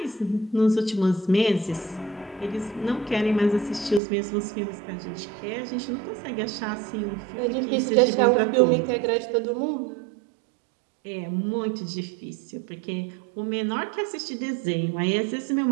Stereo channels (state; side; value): drops out; left; at 4.0 s